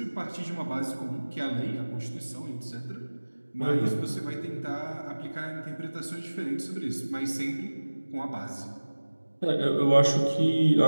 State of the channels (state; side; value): inverted; both; correlation -1.00